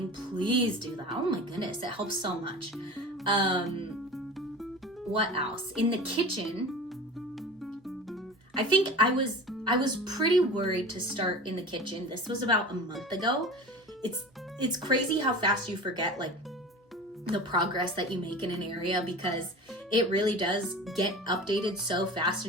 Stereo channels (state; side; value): normal; both; correlation 0.35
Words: please do that. Oh my goodness, it helps so much. What else? In the kitchen, I think I was pretty worried to start in the kitchen. This was about a month ago. It's crazy how fast you forget like the progress that you make in an area, because it really does get updated so fast